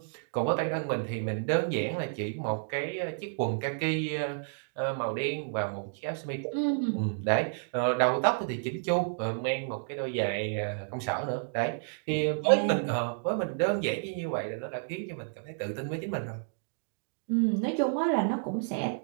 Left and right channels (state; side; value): silent; left; digital silence